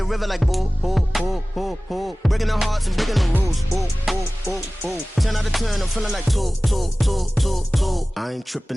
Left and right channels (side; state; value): both; normal; correlation 0.98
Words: river like boo, boo, boo, boo, boo. Breaking the hearts and breaking the rules. Ooh, ooh, ooh, ooh. 10 out of 10, I'm feeling like two. I ain't